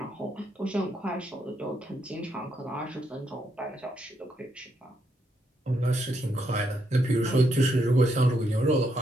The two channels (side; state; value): both; normal; correlation 0.78